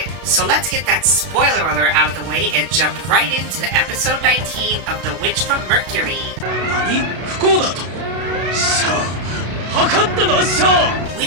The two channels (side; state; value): left; late; 32 ms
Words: So let's get that spoiler alert out of the way and jump right into episode 19 of The Witch from Mercury. We